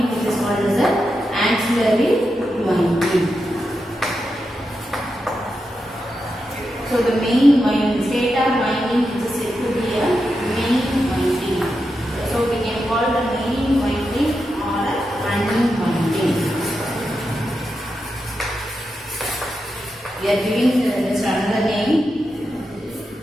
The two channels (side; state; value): both; normal; correlation 0.87